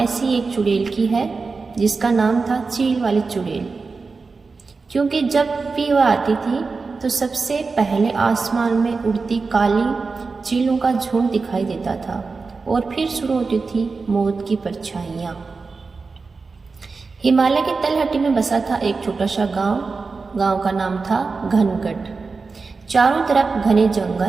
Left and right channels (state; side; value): quieter; left; 4.4 dB